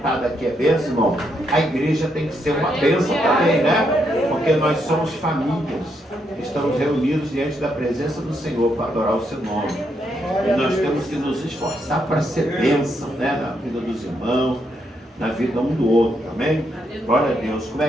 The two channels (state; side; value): normal; both; correlation 0.78